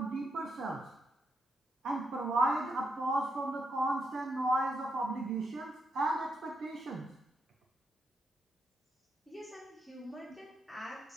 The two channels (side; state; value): both; normal; correlation 0.81